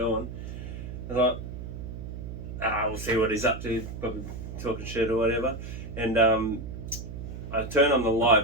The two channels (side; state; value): right; noise; hum, 9 dB below the sound